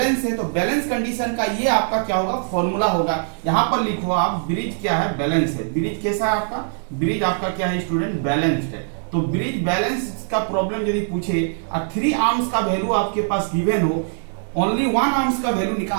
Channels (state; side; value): silent; left; 64 dB below the other